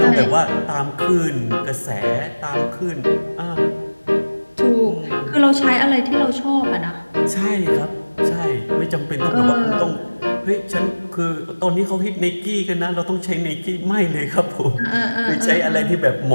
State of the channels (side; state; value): both; inverted; correlation -1.00